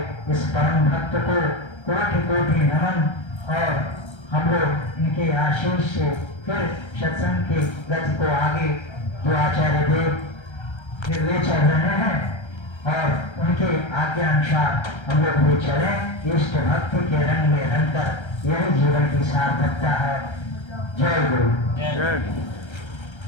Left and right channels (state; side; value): late; right; 1.3 ms